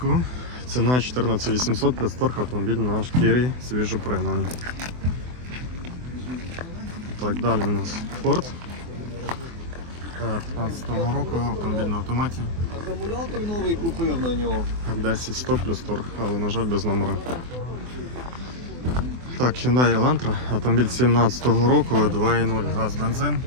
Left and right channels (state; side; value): late; left; 24 ms